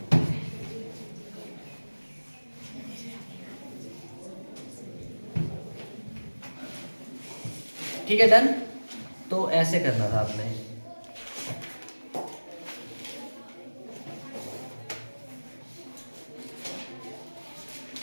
ठीक है, डन। तो ऐसे करना था आपने।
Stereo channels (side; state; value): both; inverted; correlation -1.00